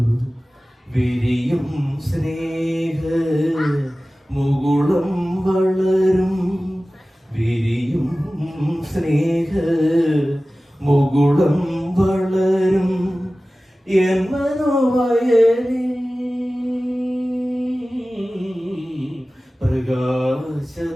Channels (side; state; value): both; normal; correlation 0.97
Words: വിരിയും സ്നേഹ മുകുളം വളരും, വിരിയും സ്നേഹ മുകുളം വളരും എൻ മനോവയലിൽ.